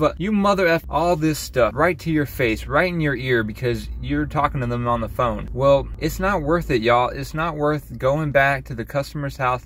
a, you mother F, all this stuff right to your face, right in your ear because you're talking to them on the phone. Well, it's not worth it, y'all. It's not worth going back to the customer's house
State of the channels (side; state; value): both; identical; correlation 1.00